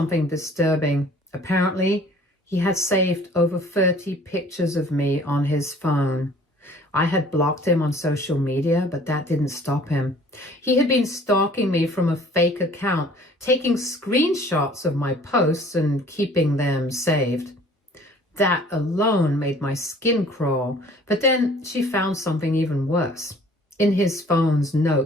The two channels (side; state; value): both; normal; correlation 0.52